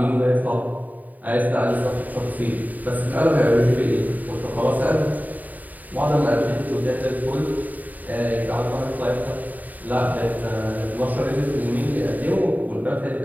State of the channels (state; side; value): late; left; 0.080 ms